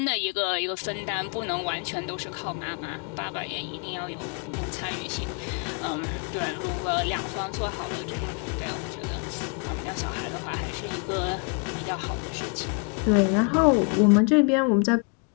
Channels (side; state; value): right; quieter; 34.2 dB